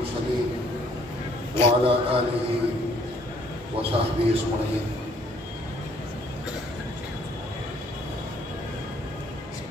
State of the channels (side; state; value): both; normal; correlation 0.62